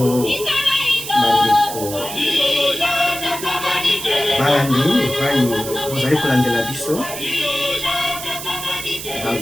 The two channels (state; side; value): noise; right; hiss, 9 dB below the sound